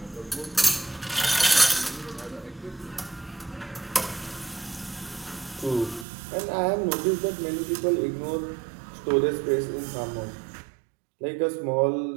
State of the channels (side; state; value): left; drops out; at 6.1 s